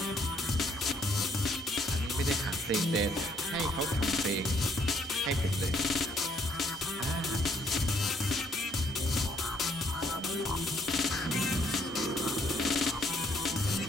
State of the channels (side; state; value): both; normal; correlation 0.68